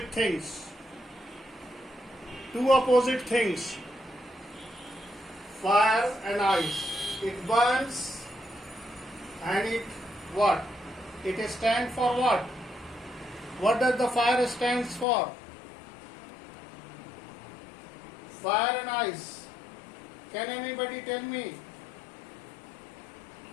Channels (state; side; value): drops out; right; at 15.1 s